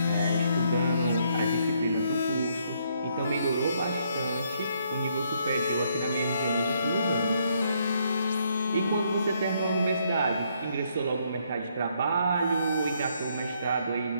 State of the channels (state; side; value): inverted; both; correlation -0.71